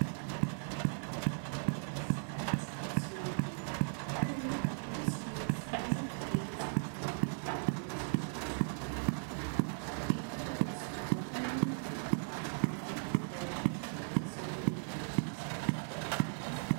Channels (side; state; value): left; silent; digital silence